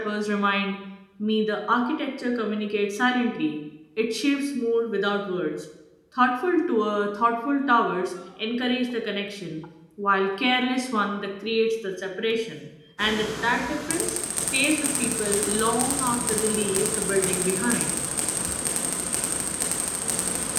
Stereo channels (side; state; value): both; identical; correlation 1.00